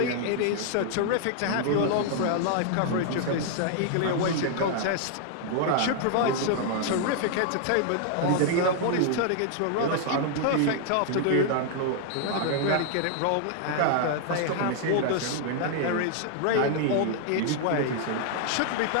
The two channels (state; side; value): different; both; correlation 0.00